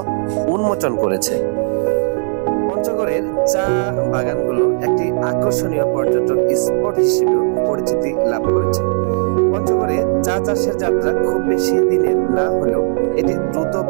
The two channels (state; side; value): silent; left; 56 dB below the other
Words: উন্মোচন করেছে। পঞ্চগড়ের চা বাগানগুলো একটি আকর্ষণীয় পর্যটন স্পট হিসেবে পরিচিতি লাভ করেছে। পঞ্চগড়ে চা চাষের যাত্রা খুব বেশি দিনের না হলেও এটি দ্রুত